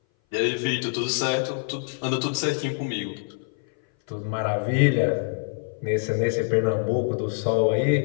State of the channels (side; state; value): right; silent; 58 dB below the other